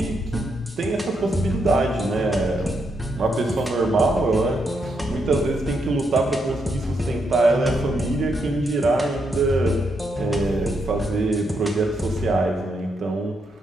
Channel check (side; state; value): both; normal; correlation 0.80